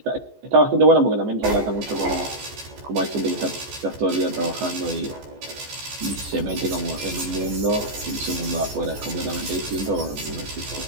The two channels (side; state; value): left; late; 14 ms